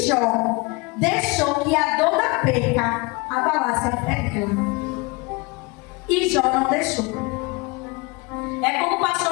Jó deixou que a dor da perca abalasse a fé dela, e Jó não deixou. É como o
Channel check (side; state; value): right; quieter; 26.4 dB